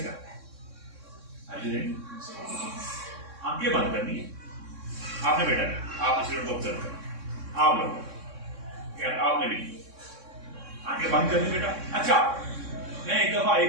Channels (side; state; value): left; late; 3.6 ms